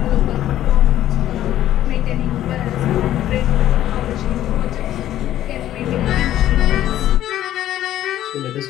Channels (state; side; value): quieter; right; 12.7 dB